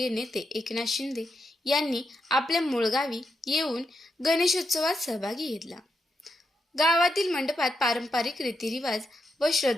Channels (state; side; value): normal; both; correlation 0.83